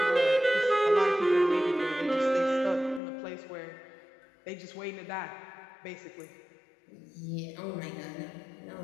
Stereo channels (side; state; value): right; drops out; at 3.0 s